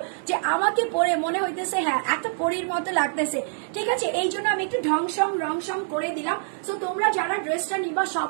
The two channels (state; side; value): silent; left; 62 dB below the other